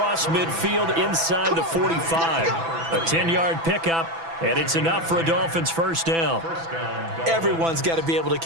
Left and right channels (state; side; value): late; left; 6.0 ms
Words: midfield inside the 45. A 10-yard pickup, And it's enough for a Dolphins first down. Everyone's got to be able to